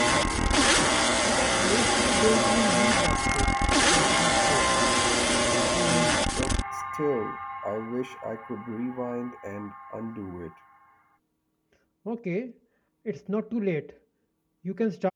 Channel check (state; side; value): identical; both; correlation 1.00